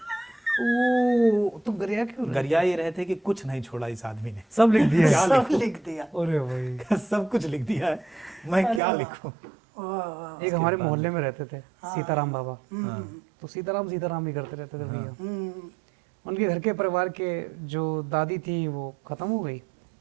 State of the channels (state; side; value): drops out; left; at 8.8 s